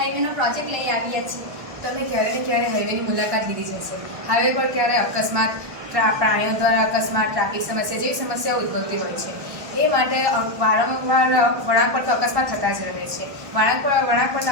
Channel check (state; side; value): late; left; 1.2 ms